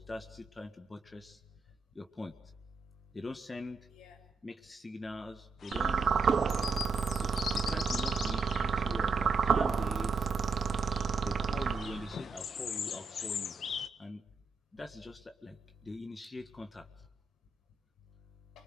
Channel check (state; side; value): quieter; left; 4.0 dB